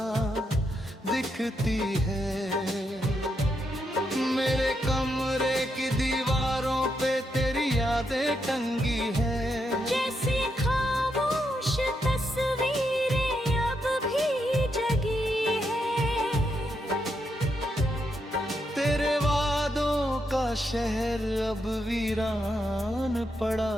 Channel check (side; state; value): both; normal; correlation 0.81